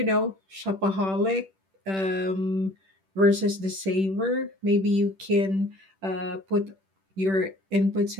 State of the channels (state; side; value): late; left; 10 ms